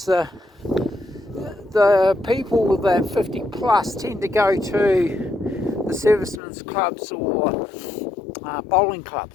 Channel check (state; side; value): drops out; right; at 6.4 s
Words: the people that 50 plus tend to go to the servicemen's clubs or bowling